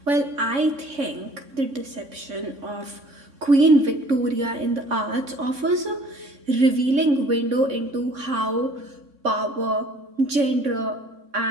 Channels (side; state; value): left; late; 3.6 ms